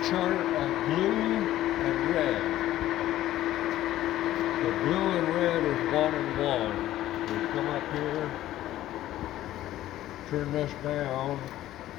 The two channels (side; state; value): right; quieter; 14.0 dB